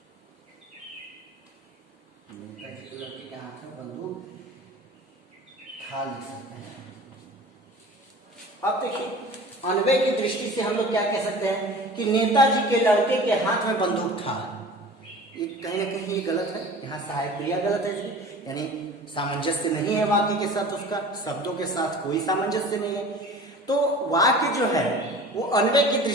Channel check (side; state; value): both; normal; correlation 0.41